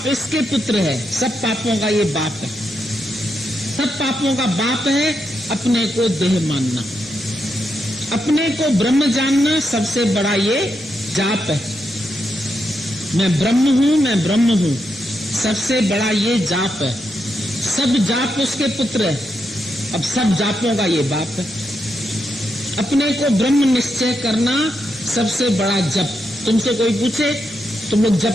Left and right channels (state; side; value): normal; both; correlation 0.83